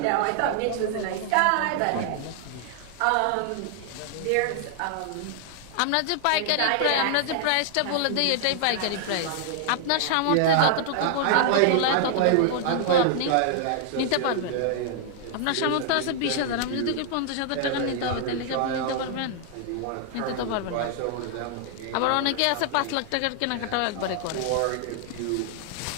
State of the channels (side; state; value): both; different; correlation 0.00